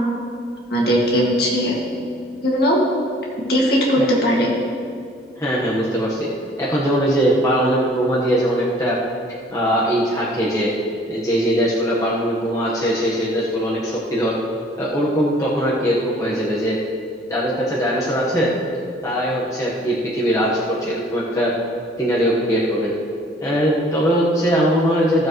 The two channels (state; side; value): normal; both; correlation 0.54